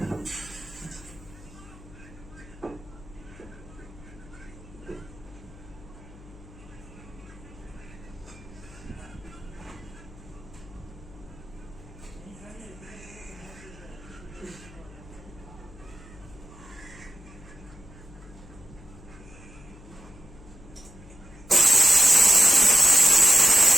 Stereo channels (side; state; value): left; noise; hum, 20 dB below the sound